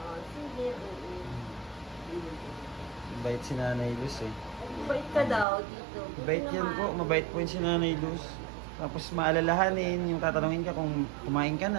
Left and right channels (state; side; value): drops out; left; at 5.5 s